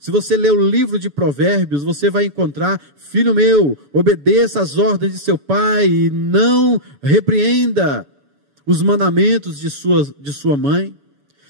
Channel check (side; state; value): left; late; 7.0 ms